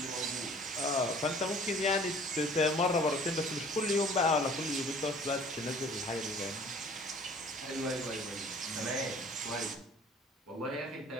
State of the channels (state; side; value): normal; both; correlation 0.51